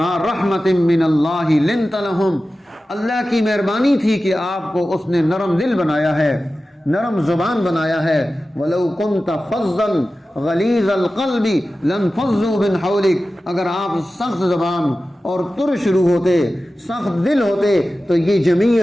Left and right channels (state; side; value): normal; both; correlation 0.94